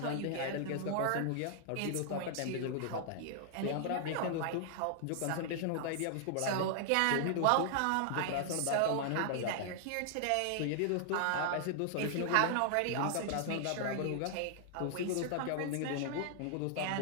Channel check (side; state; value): both; different; correlation -0.01